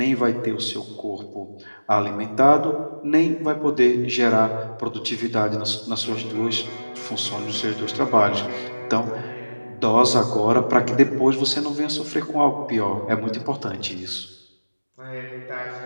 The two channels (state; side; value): inverted; both; correlation -1.00